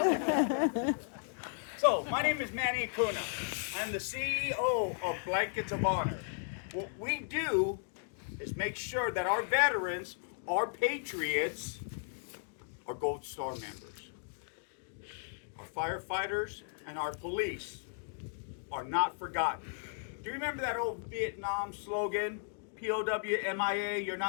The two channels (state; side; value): silent; right; digital silence